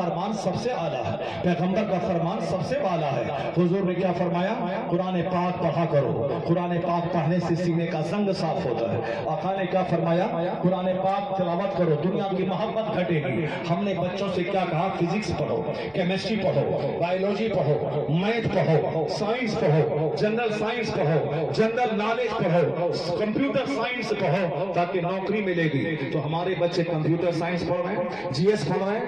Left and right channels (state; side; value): noise; left; rumble, 28 dB below the sound